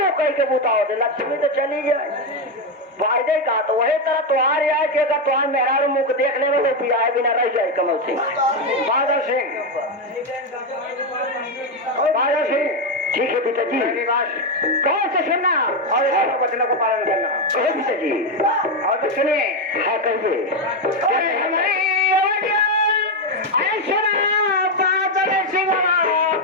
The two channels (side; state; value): both; normal; correlation 0.07